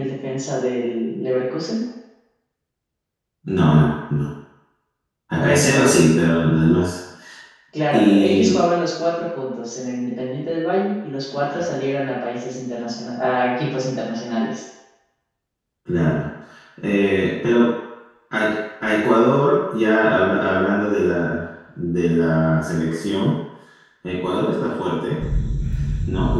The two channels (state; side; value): identical; both; correlation 1.00